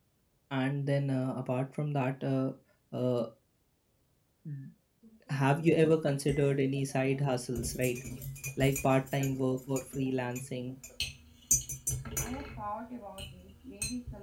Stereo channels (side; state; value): both; identical; correlation 1.00